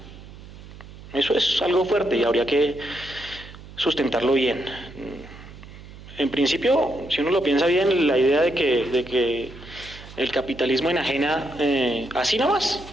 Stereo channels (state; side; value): noise; right; hum, 17 dB below the sound